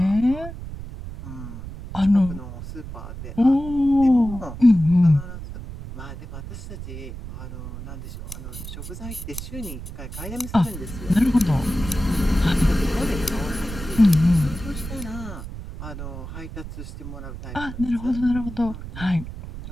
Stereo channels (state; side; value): noise; right; rumble, 10 dB below the sound